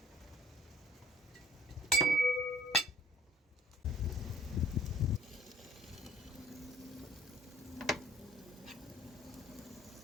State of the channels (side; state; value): both; normal; correlation 0.54